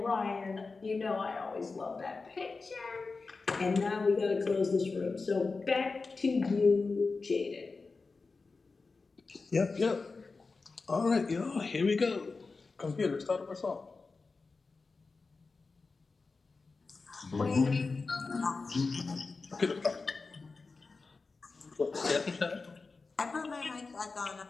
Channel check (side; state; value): right; quieter; 4.1 dB